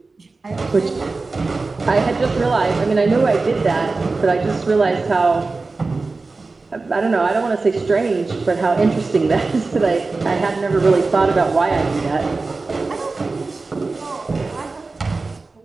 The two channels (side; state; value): left; quieter; 3.8 dB